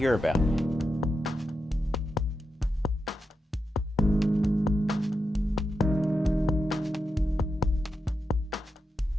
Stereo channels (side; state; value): both; normal; correlation 0.88